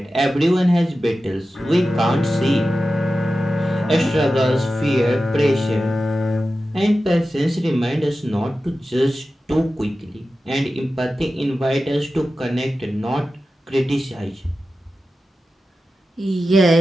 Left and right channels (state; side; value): normal; both; correlation 0.93